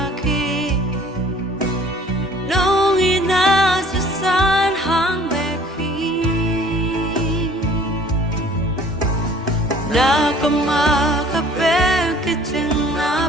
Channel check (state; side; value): normal; both; correlation 0.52